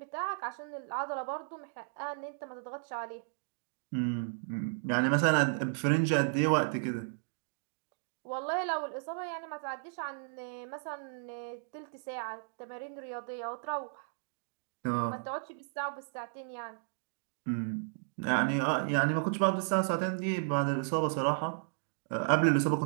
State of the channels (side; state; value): left; silent; digital silence